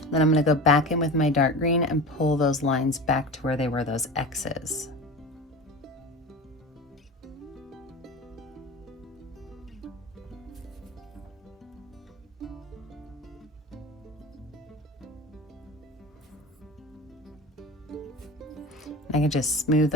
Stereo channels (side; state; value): both; normal; correlation 0.32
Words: Then I'm going to go back in with my dark green and pull those lines back to where they were those X's. I can just smooth